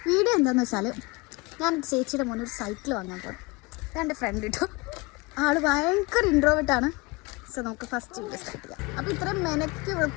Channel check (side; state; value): right; quieter; 25.5 dB